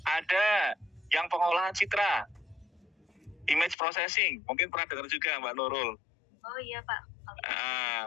Ada yang pengolahan citra, image processing. Mungkin pernah dengar juga Mbak Nurul. Oh iya Pak.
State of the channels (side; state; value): right; drops out; at 3.8 s